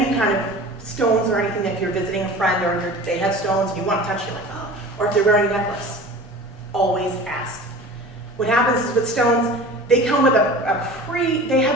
kind of stones or anything, if you're visiting a friend or they have stones and you want to touch, you're like, oh, or if they're wearing a necklace, always ask. What happens is with stones, they come with they have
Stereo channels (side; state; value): both; normal; correlation 0.38